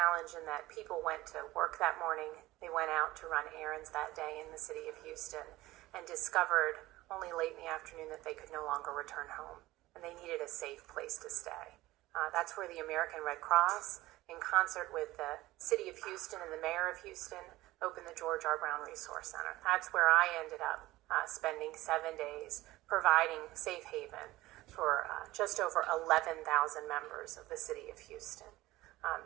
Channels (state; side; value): quieter; left; 17.6 dB